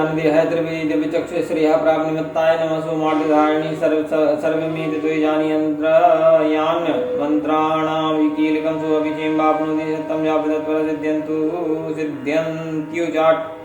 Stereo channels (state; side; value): identical; both; correlation 1.00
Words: देह त्रिवेद विचक्षु श्रेय प्राप्त निमित्ताय नमः सोमार्धधारिणी सर्वमेत द्वैजानि यंत्रयान मंत्राणां विकीलकं सोऽभिषेकं वाप्नोति सत्यं यावदत्पर